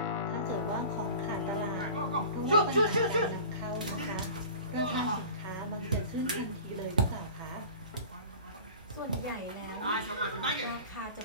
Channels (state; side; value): inverted; both; correlation -0.39